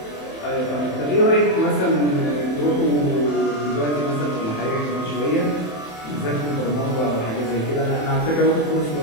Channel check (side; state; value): right; late; 27 ms